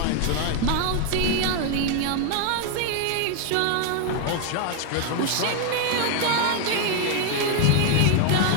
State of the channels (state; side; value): different; both; correlation 0.00